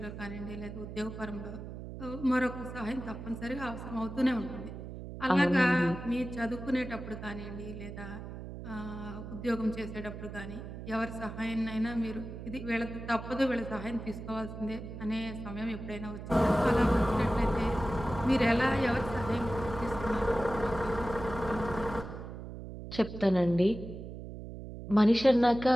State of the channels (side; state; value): right; noise; hum, 10 dB below the sound